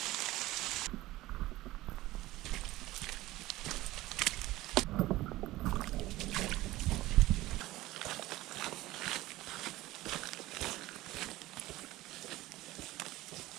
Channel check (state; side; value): quieter; left; 17.6 dB